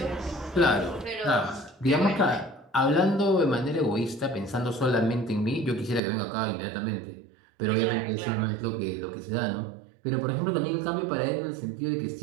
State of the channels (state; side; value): drops out; left; at 6.0 s